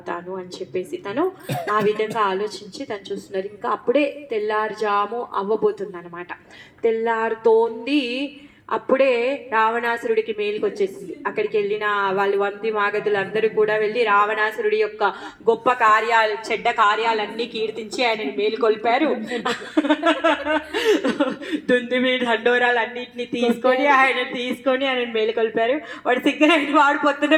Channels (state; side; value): identical; both; correlation 1.00